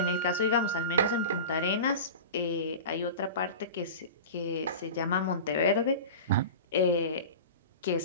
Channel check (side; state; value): both; inverted; correlation -0.31